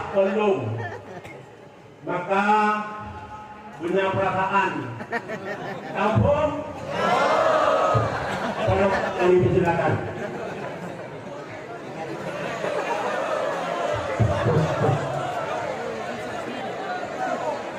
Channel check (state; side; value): identical; both; correlation 1.00